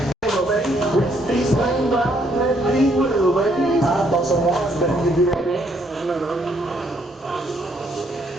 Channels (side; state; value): both; normal; correlation 0.70